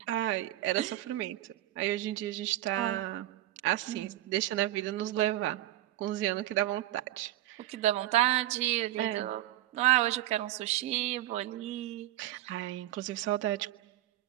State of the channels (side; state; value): left; quieter; 15.0 dB